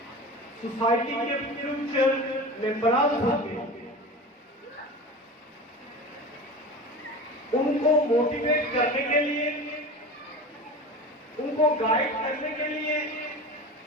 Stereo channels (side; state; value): both; normal; correlation 0.31